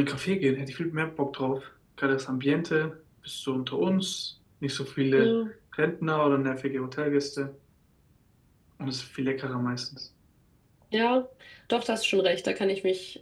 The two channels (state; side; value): identical; both; correlation 1.00